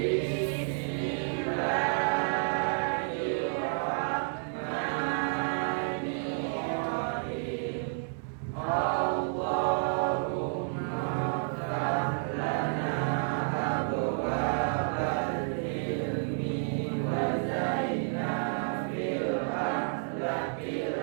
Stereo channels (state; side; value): silent; left; digital silence